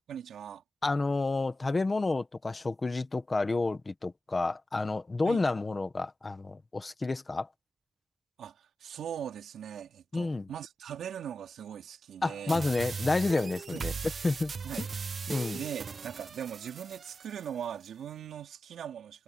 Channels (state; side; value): normal; both; correlation 0.93